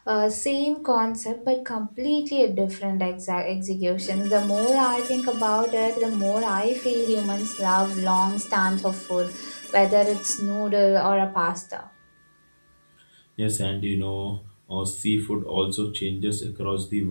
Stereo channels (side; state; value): both; inverted; correlation -1.00